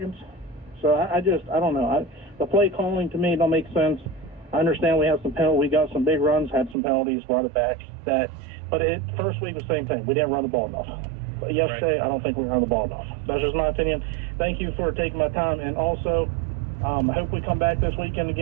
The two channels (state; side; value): drops out; left; at 6.8 s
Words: So I don't know. The play calling to me don't make sense. I understand we have some penalties. We got some big runs, had some penalties, brought it back. But first week was the same thing. We didn't run the ball enough. But yesterday, right. I don't think we ran the ball enough. That's just my opinion. Thank you for taking my time. And also, I hope we come back this weekend